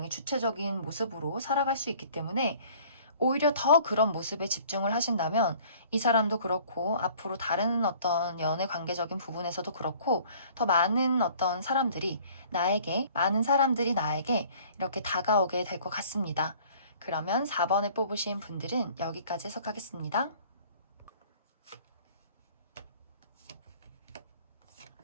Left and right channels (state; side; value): inverted; both; correlation -0.52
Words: 주체적인 모습으로 살아갈 수 있기 때문에 오히려 더 그런 모습에 집중을 하신다면 이 사람도 그렇고 앞으로 다른 어떤 연애 관계적인 부분에서도 그렇고 더 많은 어떤 사람들이 많은 사람들이 나에게 이렇게 다가오게 될 것 같습니다. 그러면 4번을 뽑으신 분들은 여기까지 해석하겠습니다.